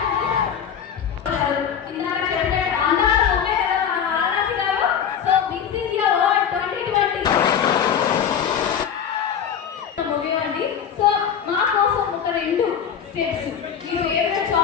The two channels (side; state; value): right; quieter; 8.1 dB